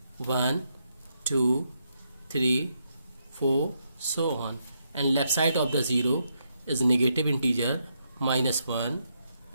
1, 2, 3, 4, so on, and left side of the 0 is negative integer -1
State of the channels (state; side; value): inverted; both; correlation -0.79